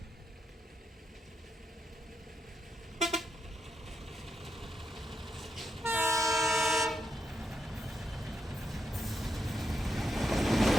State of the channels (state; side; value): normal; both; correlation 0.83